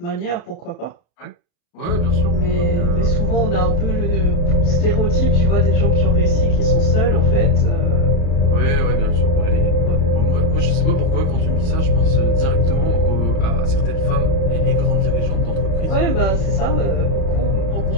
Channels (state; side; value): late; right; 35 ms